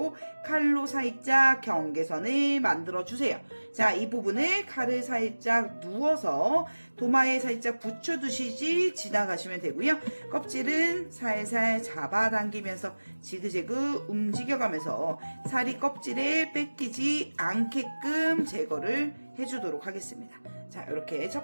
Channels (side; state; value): both; inverted; correlation -1.00